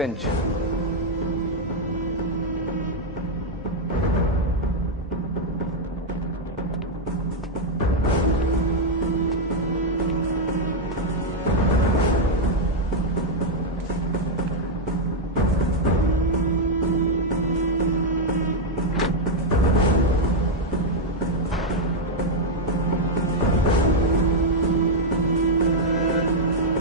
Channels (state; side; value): normal; both; correlation 0.00